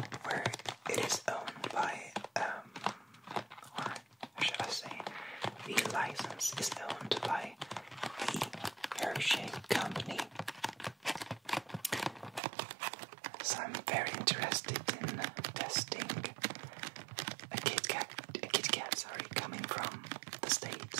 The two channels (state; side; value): drops out; left; at 12.4 s